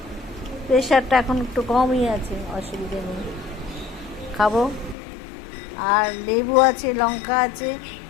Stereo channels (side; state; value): right; drops out; at 5.0 s